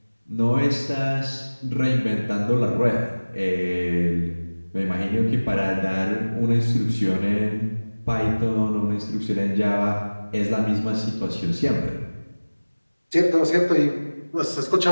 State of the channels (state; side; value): inverted; both; correlation -1.00